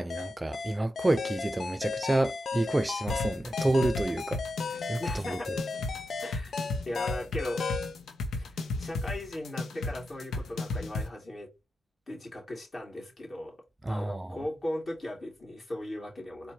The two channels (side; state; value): both; normal; correlation 0.88